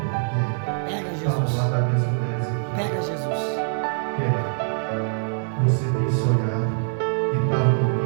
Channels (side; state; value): left; silent; digital silence